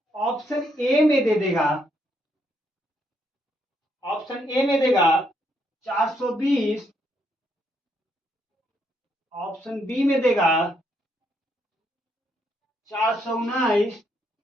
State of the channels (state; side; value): normal; both; correlation 0.75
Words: ऑप्शन ए में दे देगा 420, ऑप्शन बी में देगा 419,